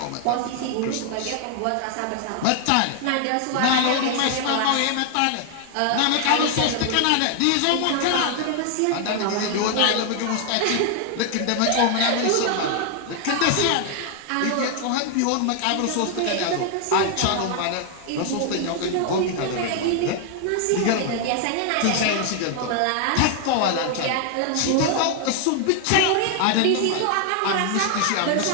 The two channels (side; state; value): both; different; correlation 0.00